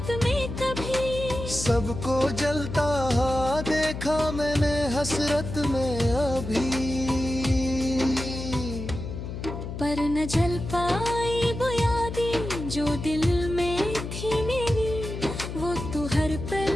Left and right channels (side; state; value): left; noise; hum, 7 dB below the sound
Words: में कभी, सबको जलता हुआ देखा मैंने हसरत में अभी, पर न जल पाई वो यादें जो दिल में थी मेरी। वो तो हर पल